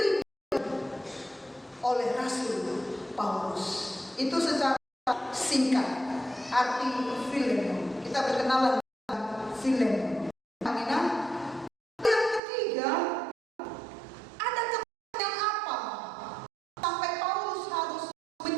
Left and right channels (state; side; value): drops out; left; at 12.4 s